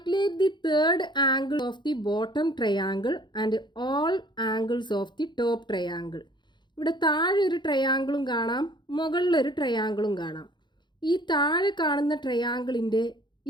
the third angle of the bottom triangle and all angles of the top triangle. ഇവിടെ താഴെ ഒരു ട്രയാങ്കിളും കാണാം, മുകളിലൊരു ട്രയാങ്കിളും കാണാം. ഈ താഴെ കാണുന്ന ട്രയാങ്കിളിൻ്റെ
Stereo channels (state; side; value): late; right; 0.22 ms